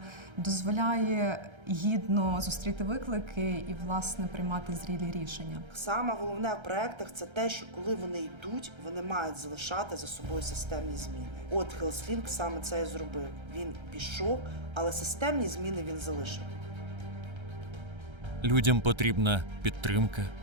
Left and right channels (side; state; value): left; late; 1.3 ms